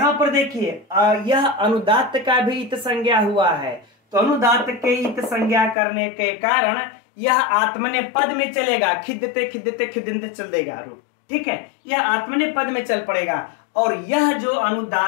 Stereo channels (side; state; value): right; drops out; at 5.8 s